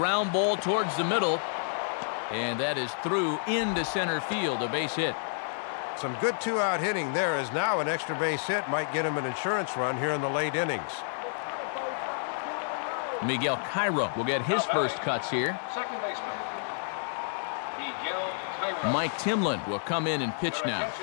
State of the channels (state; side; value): silent; right; 57 dB below the other